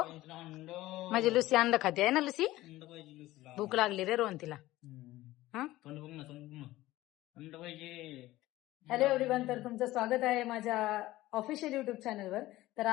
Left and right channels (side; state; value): right; quieter; 16.9 dB